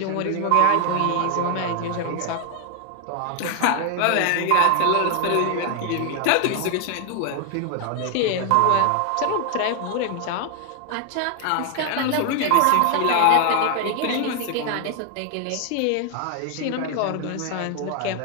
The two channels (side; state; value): both; different; correlation 0.00